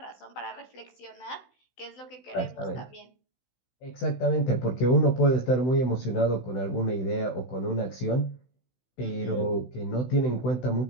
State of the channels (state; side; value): late; right; 16 ms